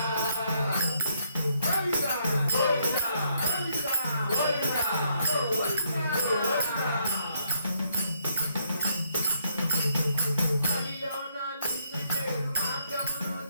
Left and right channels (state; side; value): inverted; both; correlation -0.73